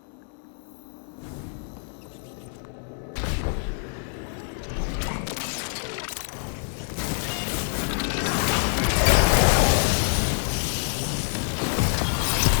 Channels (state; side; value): silent; right; 61 dB below the other